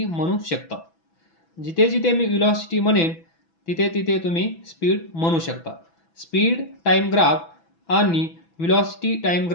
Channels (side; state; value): right; late; 6.0 ms